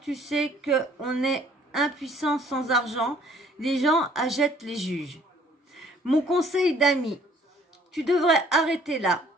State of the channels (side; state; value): both; normal; correlation 0.59